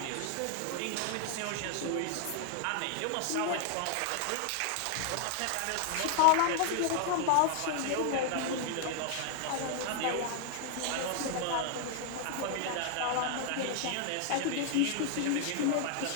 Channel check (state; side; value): different; both; correlation 0.00